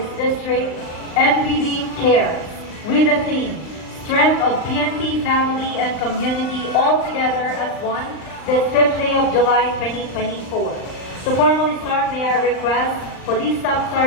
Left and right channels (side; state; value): right; late; 39 ms